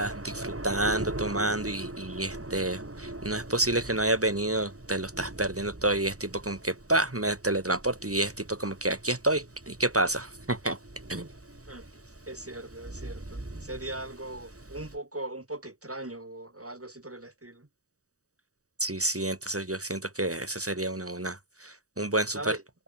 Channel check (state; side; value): late; left; 0.66 ms